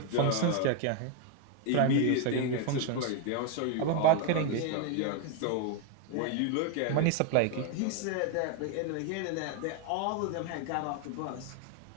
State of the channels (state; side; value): different; both; correlation 0.01